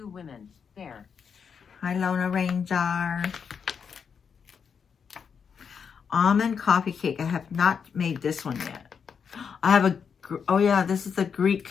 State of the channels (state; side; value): quieter; right; 6.6 dB